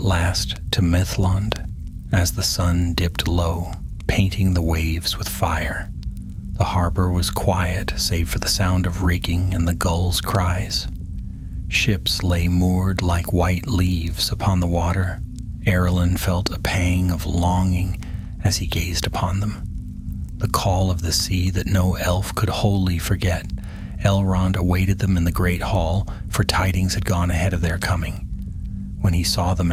last to Mithlond as the sun dipped low, painting the waves with fire. The harbor was quiet, save for the sound of rigging and the gulls' cries. Ships lay moored like white leaves upon the water. Arelon felt a pang of longing as he gazed upon them. The call of the sea that no elf could wholly forget. Elrond awaited them in the great hall, for tidings had gone ahead of their coming. When he saw them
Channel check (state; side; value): identical; both; correlation 1.00